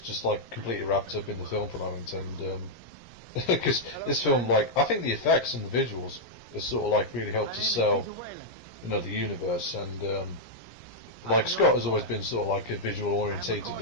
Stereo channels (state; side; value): late; right; 17 ms